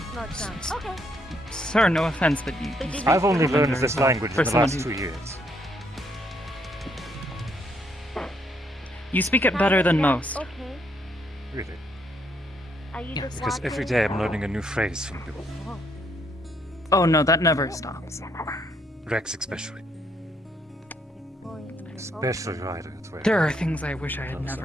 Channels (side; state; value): both; normal; correlation 0.72